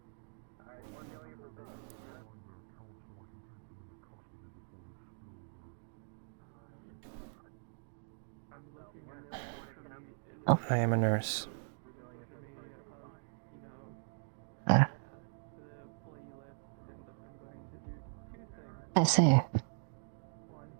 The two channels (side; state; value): left; silent; digital silence